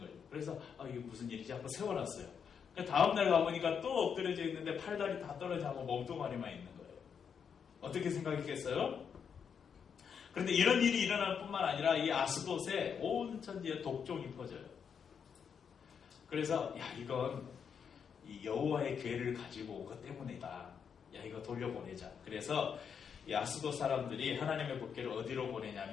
그래서 이게 무슨 일이지 하고 세워놨어요. 그러니까 다음날 가보니까 또 엎드려져 있는데 팔다리 다 떨어져서 몸뚱아리만 있는 거예요. 어떻게 생각했겠어요? 그런데 이런 일이 일어날 뿐만 아니라 이 아스돗에 온 천지에 독종이 퍼져요. 그래서 이건 이 여호와의 궤를 가지고 온 것 때문이다. 이거 돌려보내자. 그래서 이 아스돗 사람들이 하나님의 법궤를 어디로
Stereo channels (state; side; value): quieter; right; 7.0 dB